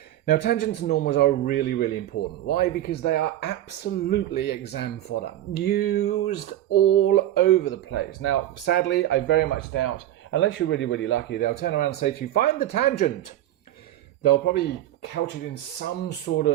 Now, tangents and normals are really important. Why? Because they are absolutely exam fodder, used all over the place. Now, sadly, I very much doubt, unless you're really lucky, they'll turn around and say to you, find the tangent. They'll probably couch it in some sort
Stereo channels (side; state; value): left; quieter; 13.1 dB